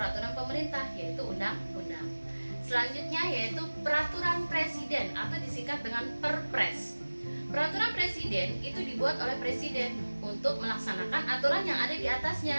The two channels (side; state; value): both; inverted; correlation -1.00